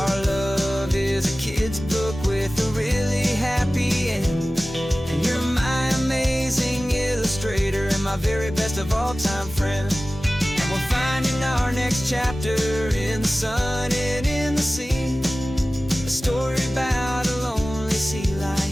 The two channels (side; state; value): both; normal; correlation 0.97